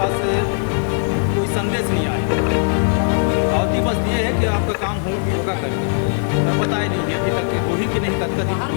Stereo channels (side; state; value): right; silent; 66 dB below the other